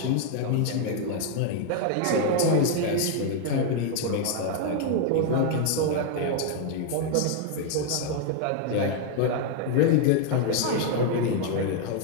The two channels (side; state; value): both; different; correlation 0.00